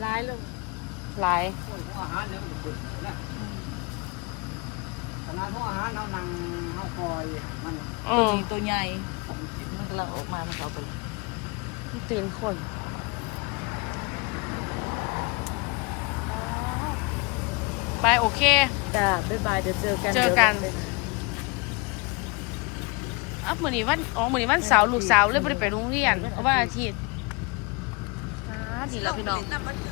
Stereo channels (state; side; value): quieter; right; 28.1 dB